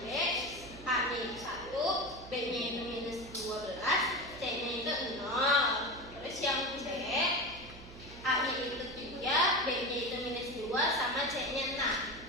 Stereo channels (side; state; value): right; noise; hum, 17 dB below the sound